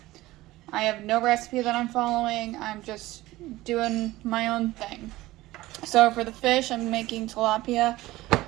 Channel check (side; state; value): left; quieter; 17.8 dB